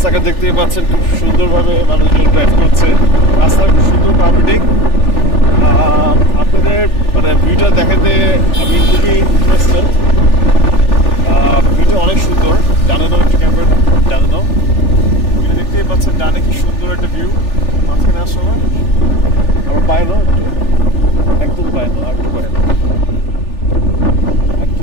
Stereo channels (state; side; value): late; right; 3.4 ms